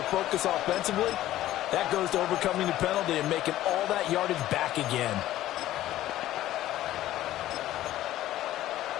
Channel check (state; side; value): quieter; right; 14.2 dB